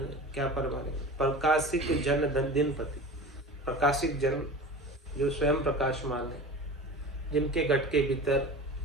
क्या परमाने, प्रकाशिक जन दिन पति, प्रकाशिक जन जो स्वयं प्रकाशमान है, जिनके घट के भीतर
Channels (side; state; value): both; normal; correlation 0.35